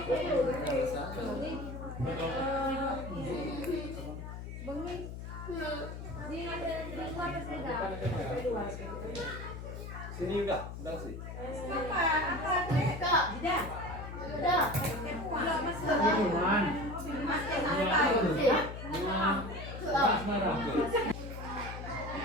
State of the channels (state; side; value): noise; left; hum, 9 dB below the sound